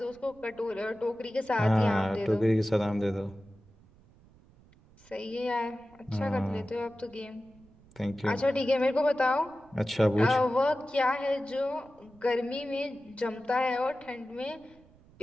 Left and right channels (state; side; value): noise; right; rumble, 27 dB below the sound